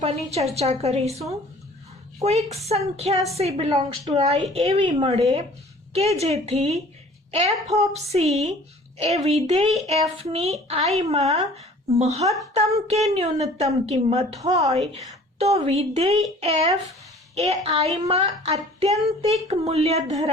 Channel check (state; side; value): normal; both; correlation 0.49